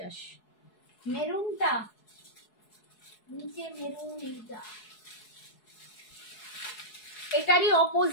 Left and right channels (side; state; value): right; late; 4.7 ms